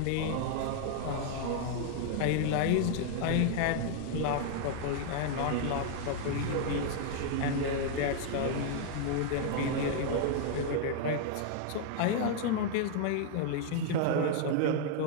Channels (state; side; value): different; both; correlation -0.01